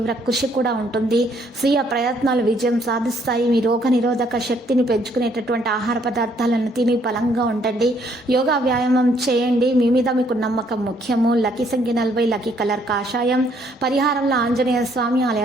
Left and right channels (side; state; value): both; normal; correlation 0.67